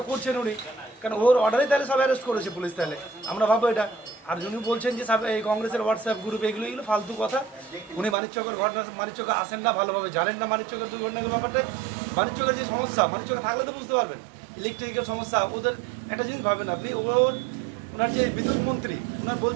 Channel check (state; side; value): drops out; left; at 8.2 s